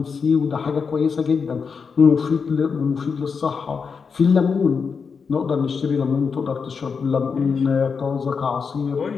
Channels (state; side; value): quieter; right; 5.6 dB